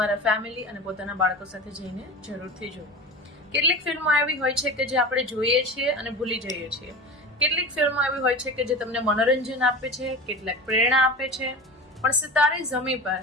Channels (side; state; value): both; normal; correlation 0.30